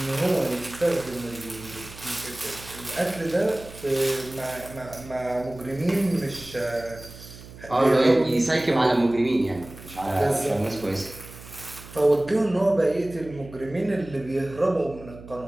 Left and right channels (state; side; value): noise; right; hum, 17 dB below the sound